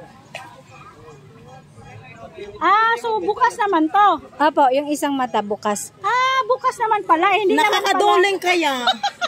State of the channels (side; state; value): both; identical; correlation 1.00